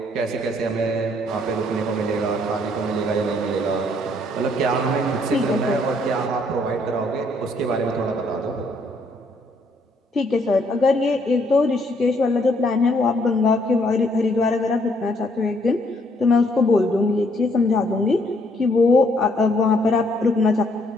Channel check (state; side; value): normal; both; correlation 0.68